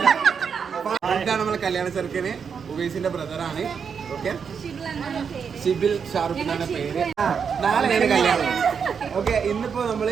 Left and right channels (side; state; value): left; quieter; 6.5 dB